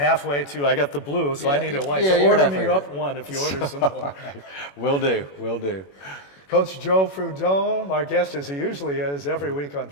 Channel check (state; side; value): late; right; 21 ms